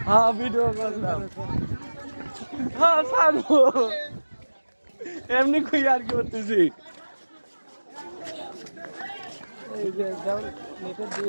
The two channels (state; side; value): inverted; both; correlation -1.00